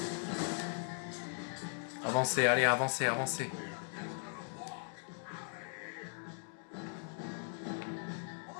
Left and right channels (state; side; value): silent; right; 52 dB below the other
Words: Avancez, allez, avancez, avancez.